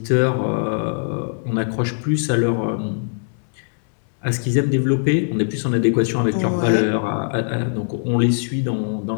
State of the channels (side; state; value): right; silent; 65 dB below the other